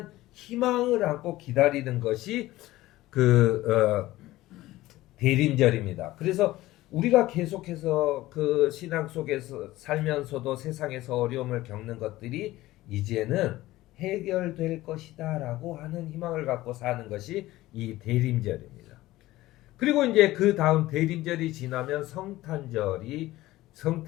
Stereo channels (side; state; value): right; quieter; 17.0 dB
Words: 희망을 안고 기다리는 것이 대림절입니다. 그래서 우리가 계속해서 그 신앙 속에서 살면서도 세상에서 어려움을 겪는 것들이 이제는 해결될 것이다 라고 하는 희망을 갖고 사는 것이 이 대림절입니다. 그리고 이제 그 다음 대림절이 지나면 성탄절이